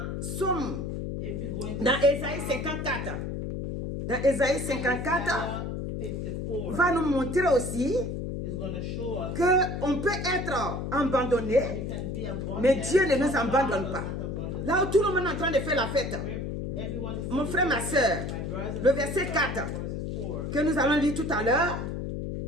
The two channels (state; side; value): noise; left; hum, 4 dB below the sound